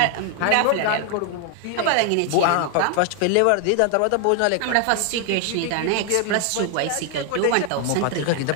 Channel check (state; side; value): different; both; correlation 0.00